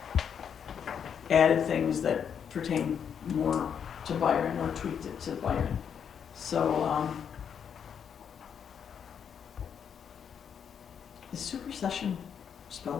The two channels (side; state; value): right; quieter; 7.7 dB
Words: added things that pertain more to Byron, or tweaked it to Byron. So, is supersession